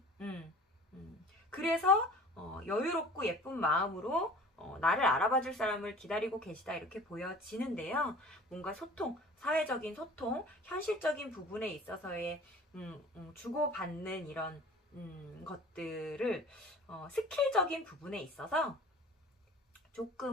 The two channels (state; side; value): normal; both; correlation 0.44